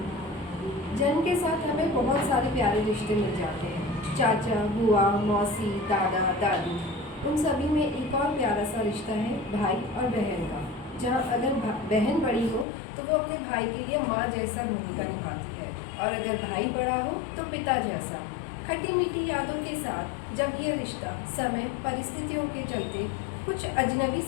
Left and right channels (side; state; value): right; drops out; at 12.7 s